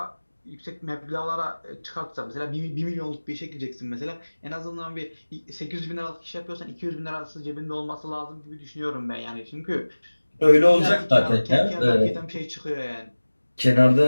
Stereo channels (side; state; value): both; inverted; correlation -1.00